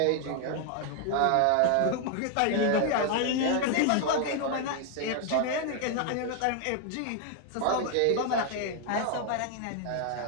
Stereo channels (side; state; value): both; different; correlation 0.01